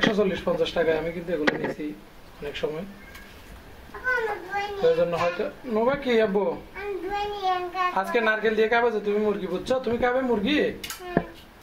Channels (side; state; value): both; identical; correlation 1.00